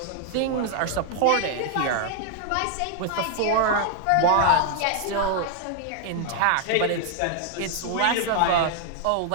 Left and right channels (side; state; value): both; different; correlation 0.00